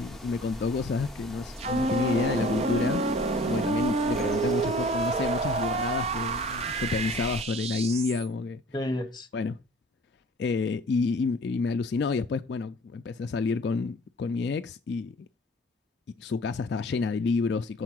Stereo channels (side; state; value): both; normal; correlation 0.50